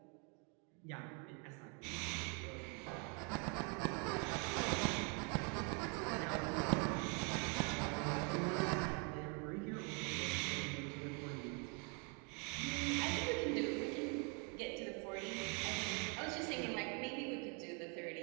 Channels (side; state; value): left; quieter; 35.4 dB